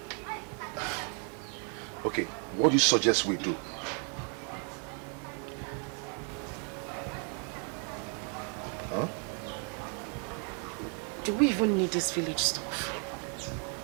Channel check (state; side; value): quieter; left; 39.7 dB